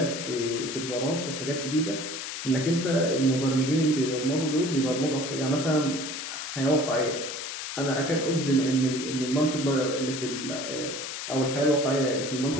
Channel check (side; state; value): left; noise; hiss, 6 dB below the sound